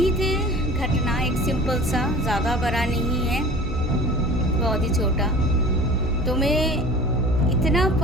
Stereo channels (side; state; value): both; normal; correlation 0.41